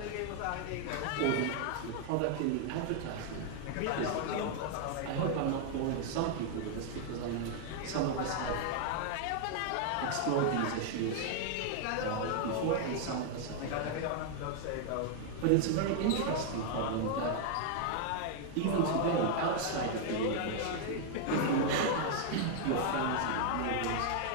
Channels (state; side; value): different; both; correlation 0.00